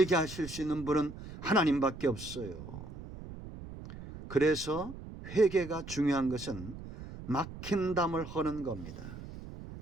하실 수 있는 분은 하나님밖에 없어요. 그래서 회개가 중요한 것은 막힌 담을 허는 겁니다.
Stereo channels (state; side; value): noise; right; rumble, 12 dB below the sound